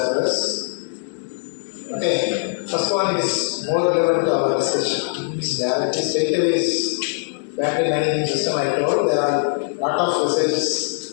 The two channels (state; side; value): silent; right; digital silence